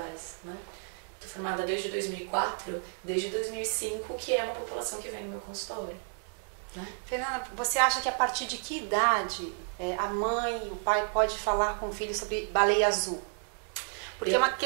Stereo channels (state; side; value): silent; left; 57 dB below the other